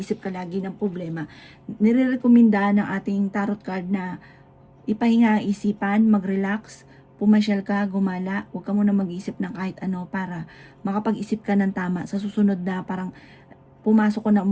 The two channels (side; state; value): both; identical; correlation 1.00